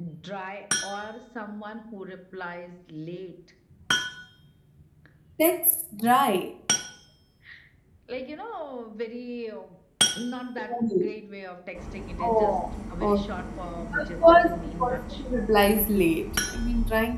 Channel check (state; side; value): identical; both; correlation 1.00